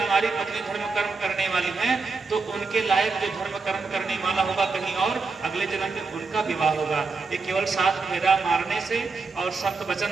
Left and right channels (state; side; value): quieter; left; 4.3 dB